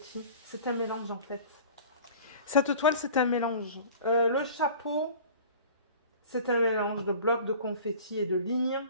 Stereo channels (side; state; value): both; inverted; correlation -0.43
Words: C'est un mélange, en fait. Cette toile, c'est un mélange. Le chapeau... C'est un mélange de blocs de confetti et de lignes.